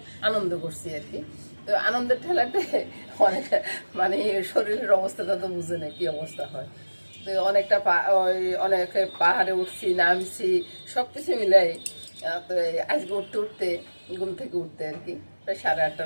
আনন্দ করছি আর কি। তো আনন্দের ঠেলাতে অনেক শরীরের অবস্থাটা তো বুঝে না কি অবস্থা হয়। তো অনেক পাহাড়ে উঠছি, নামছি, সব কিছু মিলাই। তো আজকে উঠতে ঘুম থেকে উঠতে আর কি প্রায়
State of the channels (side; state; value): both; inverted; correlation -1.00